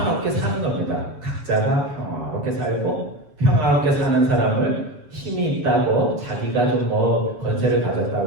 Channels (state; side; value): late; left; 7.2 ms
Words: 사는 겁니다. 각자가 평화롭게 살고 평화롭게 사는 사람을 힘이 있다고 자기가 좀 뭐 권세를